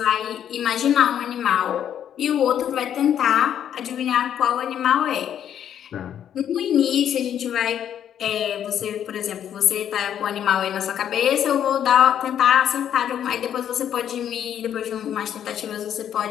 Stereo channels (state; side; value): quieter; right; 9.7 dB